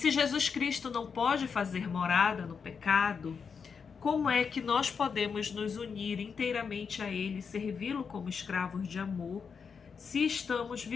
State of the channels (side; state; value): right; quieter; 6.0 dB